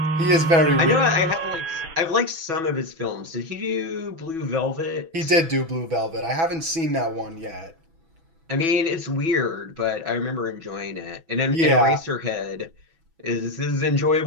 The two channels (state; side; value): late; left; 6.1 ms